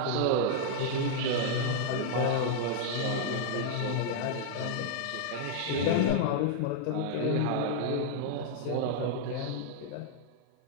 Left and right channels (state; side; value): different; both; correlation -0.01